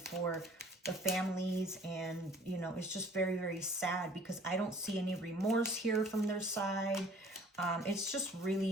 for the families, and you know, it's just very, very sad because I don't see any remorse here from their side. It's just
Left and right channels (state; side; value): normal; both; correlation 0.52